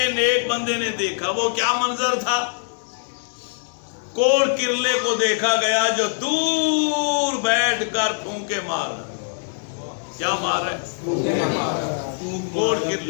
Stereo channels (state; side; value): silent; right; 64 dB below the other